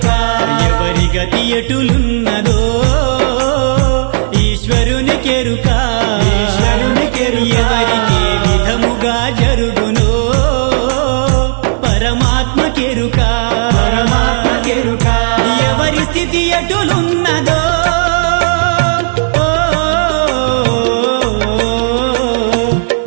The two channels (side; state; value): left; silent; digital silence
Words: ఎవరి గతి ఎటులున్నదో ఈశ్వరునికెరుక ఎవరికి విధముగా జరుగునో పరమాత్మకెరుక ఎవరి స్థితి ఎటులున్నదో